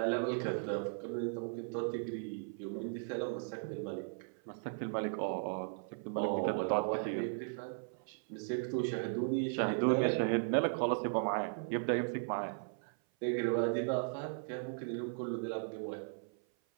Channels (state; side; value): silent; left; 53 dB below the other